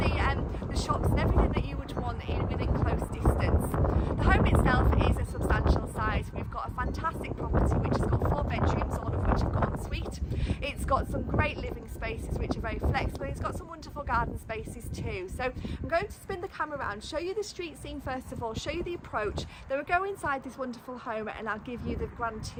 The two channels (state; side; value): identical; both; correlation 1.00